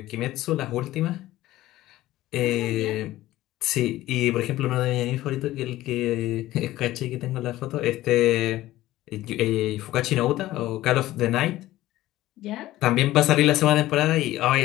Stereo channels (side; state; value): right; quieter; 15.8 dB